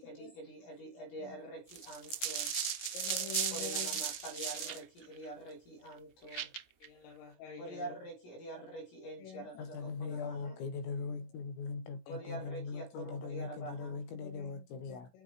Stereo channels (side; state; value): right; late; 16 ms